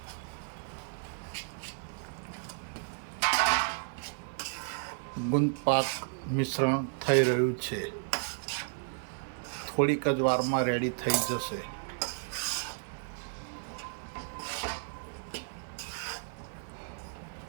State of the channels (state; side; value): silent; left; 56 dB below the other